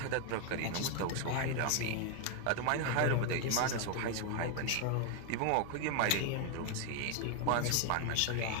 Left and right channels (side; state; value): both; different; correlation 0.01